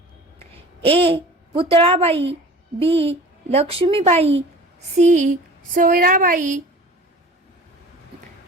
ए. पुतळाबाई, बी. लक्ष्मीबाई, सी. सोयराबाई,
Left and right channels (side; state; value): both; normal; correlation 0.42